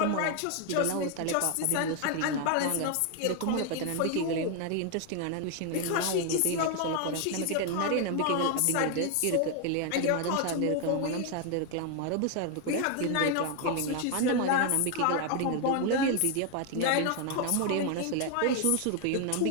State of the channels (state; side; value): different; both; correlation 0.01